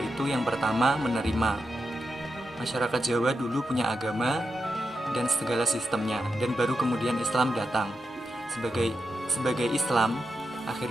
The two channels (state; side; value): normal; both; correlation 0.87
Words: yang pertama, menerima. Masyarakat Jawa dulu punya agama dan segala sistemnya, dan baru kemudian Islam datang. Sebagai Islam,